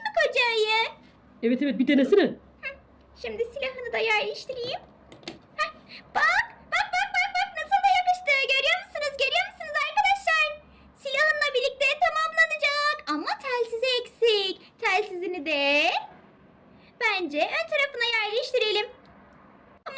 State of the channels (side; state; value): both; identical; correlation 1.00